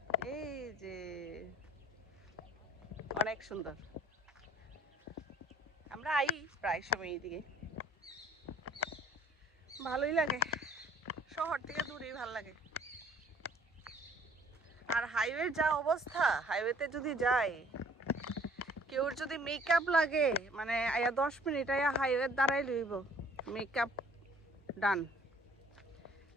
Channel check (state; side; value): normal; both; correlation 0.55